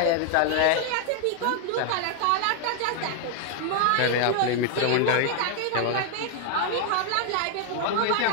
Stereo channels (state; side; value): different; both; correlation 0.00